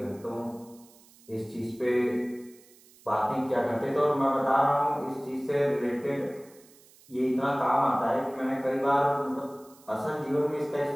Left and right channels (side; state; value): right; noise; hiss, 26 dB below the sound